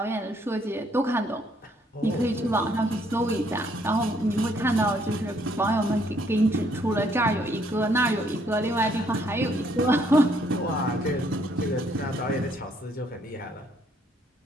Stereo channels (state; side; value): normal; both; correlation 0.68